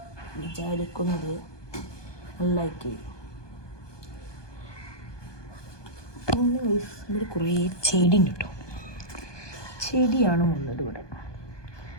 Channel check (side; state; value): right; late; 1.2 ms